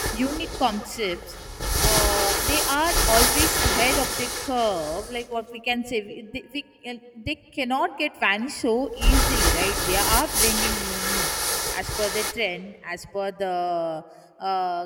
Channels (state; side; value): identical; both; correlation 1.00